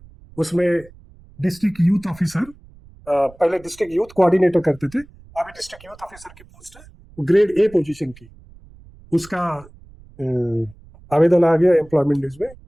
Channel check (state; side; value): noise; right; rumble, 24 dB below the sound